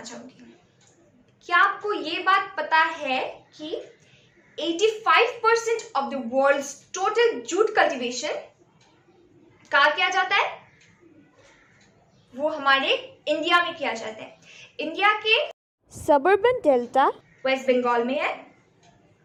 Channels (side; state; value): both; identical; correlation 1.00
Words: चाहूंगी। क्या आपको ये बात पता है कि 85% of the world's total jute cultivation कहाँ किया जाता है? वो हमारे इंडिया में किया जाता है। इंडिया के सबर्बन डेल्टा वेस्ट बंगाल में है।